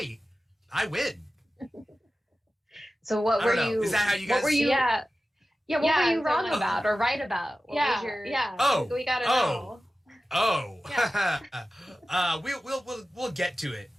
I win. So what were you? Is that how you guys? What were you? Yeah. Yeah, what were you wrong so- about or right about? What was your... We gotta know. We'll get to it.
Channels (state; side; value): normal; both; correlation 0.94